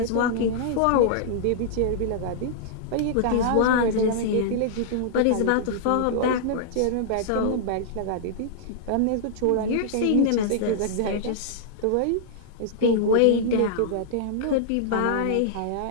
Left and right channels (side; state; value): both; different; correlation -0.01